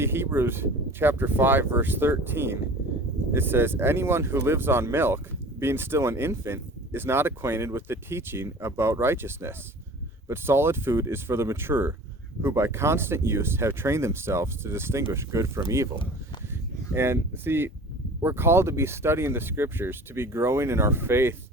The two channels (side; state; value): both; normal; correlation 0.42